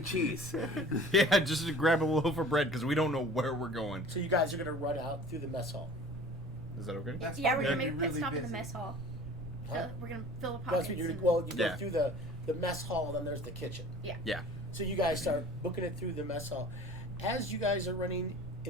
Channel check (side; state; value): right; noise; rumble, 15 dB below the sound